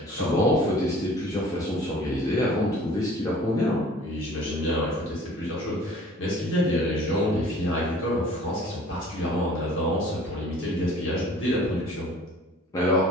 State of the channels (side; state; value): both; normal; correlation 0.49